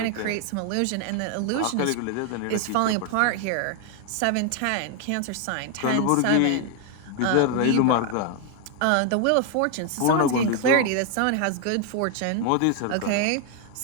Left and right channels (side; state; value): both; different; correlation 0.01